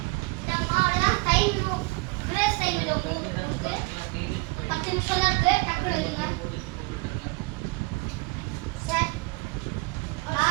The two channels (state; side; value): quieter; left; 26.7 dB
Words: பிரேஸ் டைம் இது உங்களுக்கு 10 நிமிஷம் தான் இருக்கு டக்குனு எழுதுங்க சார்